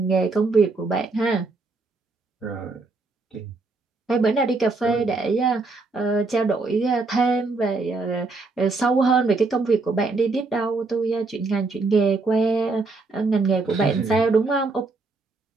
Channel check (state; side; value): quieter; left; 3.7 dB